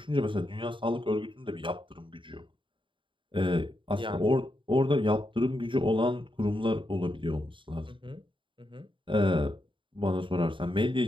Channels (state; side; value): late; left; 0.24 ms